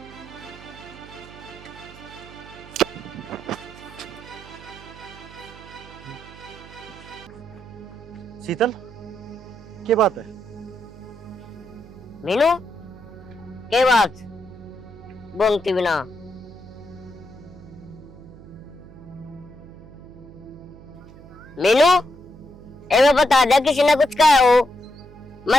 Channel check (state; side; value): noise; right; hum, 19 dB below the sound